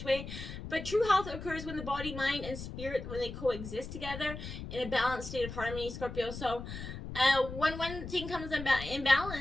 way. But true health occurs when the body, mind, and spirit, when they coexist together in a balanced state of harmony, Scorpio. So when one thing comes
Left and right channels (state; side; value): noise; left; rumble, 9 dB below the sound